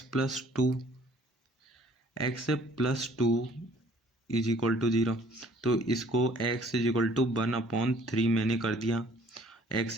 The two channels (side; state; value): both; normal; correlation 0.57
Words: plus two is equal to zero, तो इसको x is equal to one upon three मैंने कर दिया,